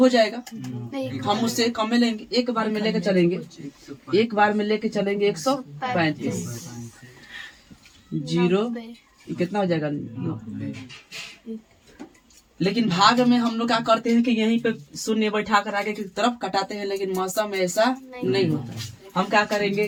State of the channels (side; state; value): both; identical; correlation 1.00